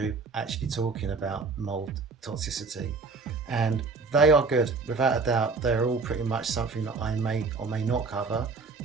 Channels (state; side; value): quieter; left; 4.3 dB